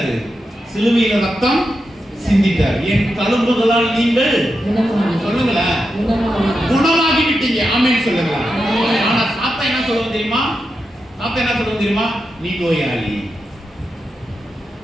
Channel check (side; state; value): both; normal; correlation 0.88